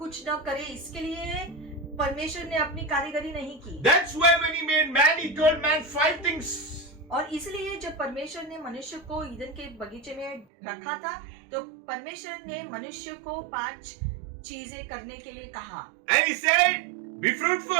न करे, इसके लिए परमेश्वर ने अपनी कारीगरी नहीं की। That's why when He made man, He told man 5 things. और इसलिए जब परमेश्वर ने मनुष्य को ईदन के बगीचे में रखा था तो परमेश्वर ने मनुष्य को 5 चीजें करने के लिए कहा। And He said, be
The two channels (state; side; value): drops out; left; at 10.5 s